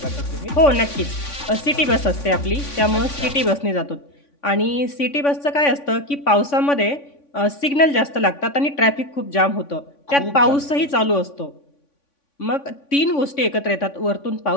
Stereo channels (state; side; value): late; right; 3.5 ms